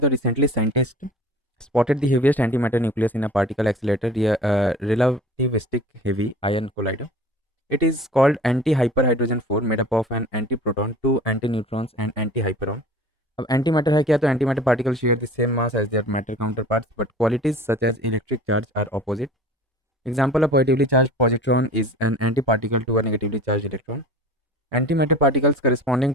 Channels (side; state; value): both; normal; correlation 0.42